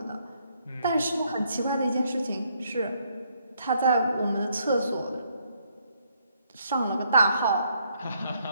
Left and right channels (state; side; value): inverted; both; correlation -0.71